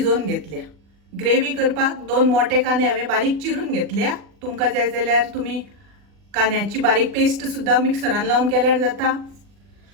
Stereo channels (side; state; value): left; late; 40 ms